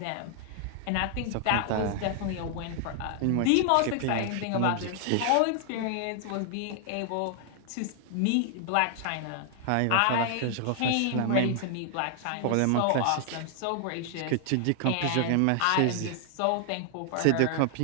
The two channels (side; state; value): both; different; correlation 0.00